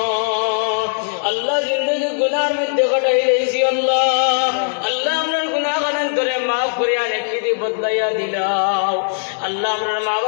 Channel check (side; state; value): right; silent; digital silence